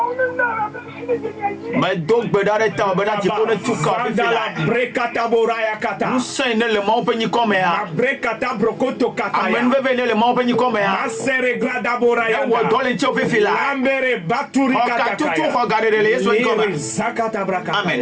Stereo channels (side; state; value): both; identical; correlation 1.00